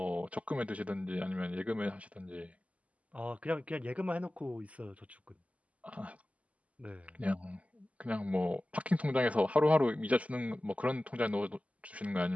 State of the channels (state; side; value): late; left; 0.068 ms